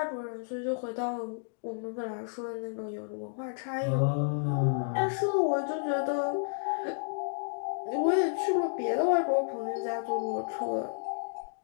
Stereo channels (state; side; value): silent; right; digital silence